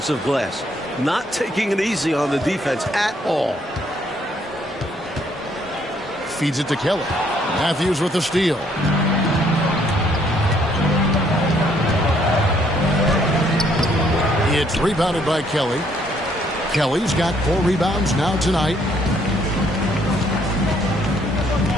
glass. Not taking it easy on the defense at all. Feeds it to Kelly. Matthews with the steal. It's rebounded by Kelly. Kelly's got 4 rebounds now tonight.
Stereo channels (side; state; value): both; normal; correlation 0.67